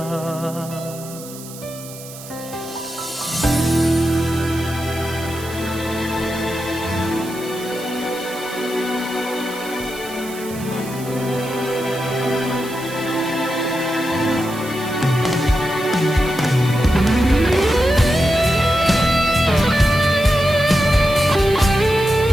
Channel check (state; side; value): noise; right; hiss, 15 dB below the sound